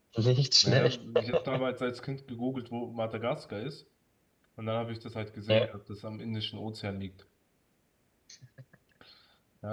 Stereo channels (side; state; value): both; identical; correlation 1.00